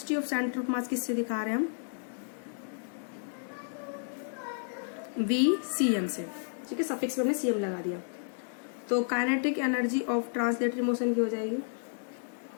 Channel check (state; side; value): silent; right; digital silence